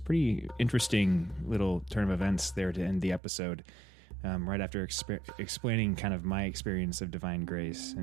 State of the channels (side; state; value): left; drops out; at 3.2 s